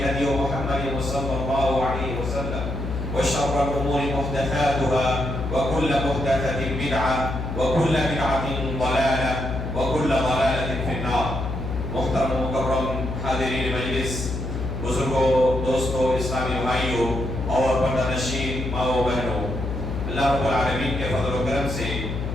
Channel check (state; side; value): noise; left; hum, 4 dB below the sound